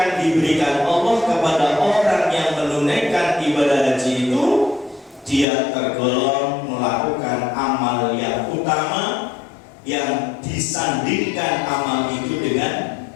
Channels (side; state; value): right; drops out; at 5.5 s